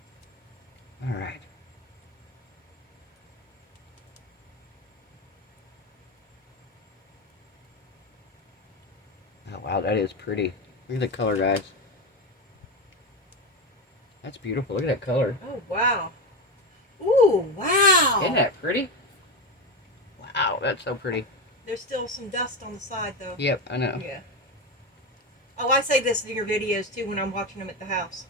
Alright. Oh wow, that is pretty. Look at the color, guys. That's beautiful. Look at that color. Oh, wow. Ooh, wow. Isn't that pretty? Wow, that's so pretty. There's still some dust on the side, though. Yep, I know. Yeah. Oh, I say this in your videos, too, when I'm watching them at the house.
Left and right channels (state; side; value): normal; both; correlation 0.16